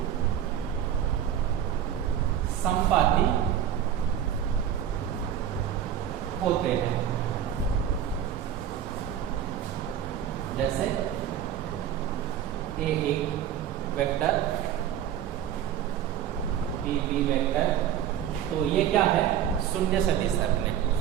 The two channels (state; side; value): quieter; left; 9.9 dB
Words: संपाती होते हैं। जैसे ए वेक्टर, बी वेक्टर, तो ये क्या है, शून्य सदिश है अपने।